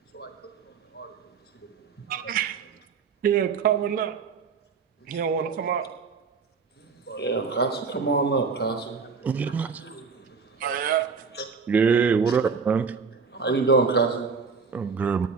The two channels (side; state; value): left; quieter; 5.3 dB